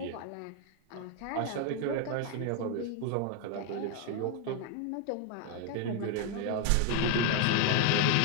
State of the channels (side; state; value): both; different; correlation 0.01